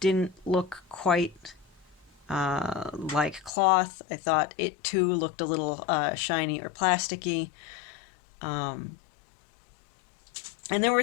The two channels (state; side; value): drops out; right; at 3.5 s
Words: didn't look quite like cloth. I thought it too looked a little shiny or plasticky. And there